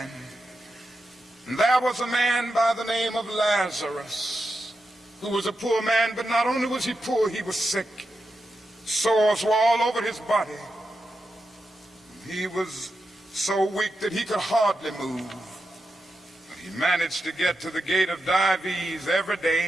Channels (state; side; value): normal; both; correlation 0.88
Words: And there was a man by the name of Lazarus, who was a poor man, but not only was he poor, he was sick. Sores were all over his body. He was so weak that he could hardly move. But he managed to get to the gate of Dives every